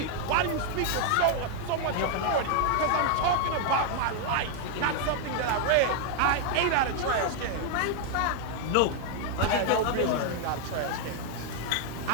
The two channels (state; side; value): different; both; correlation 0.00